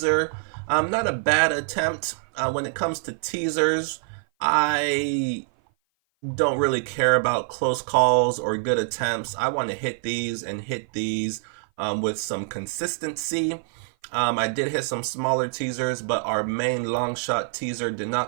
Not a bad attempt. When it comes to teasers, I don't really care about close calls or good attempts. I want to hit these and hit these with some consistency. I did hit some smaller teasers, but our main long shot teaser did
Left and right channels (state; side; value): silent; left; 56 dB below the other